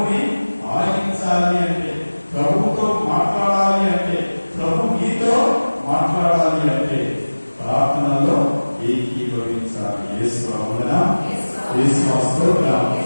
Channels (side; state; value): both; inverted; correlation -1.00